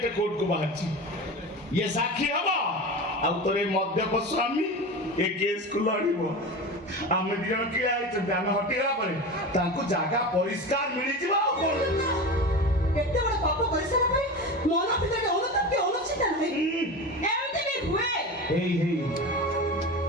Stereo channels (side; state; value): both; normal; correlation 0.28